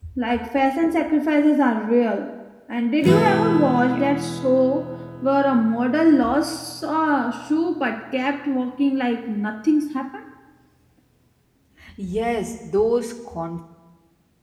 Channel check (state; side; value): identical; both; correlation 1.00